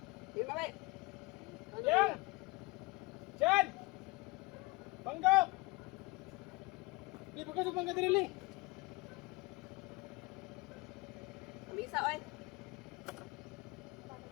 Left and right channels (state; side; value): quieter; right; 23.7 dB